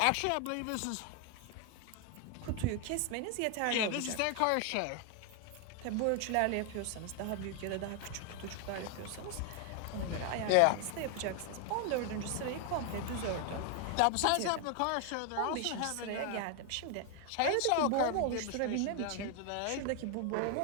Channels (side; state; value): both; different; correlation 0.00